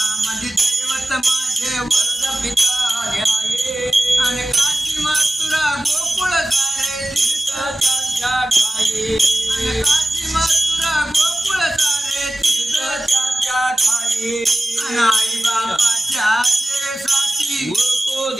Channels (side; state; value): both; normal; correlation 0.96